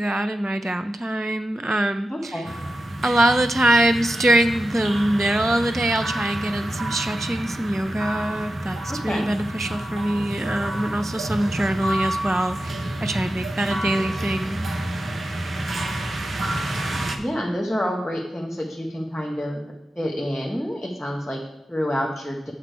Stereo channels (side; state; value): both; normal; correlation 0.91